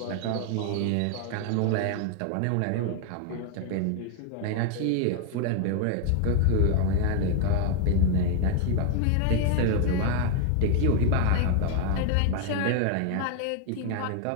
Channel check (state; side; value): different; both; correlation 0.01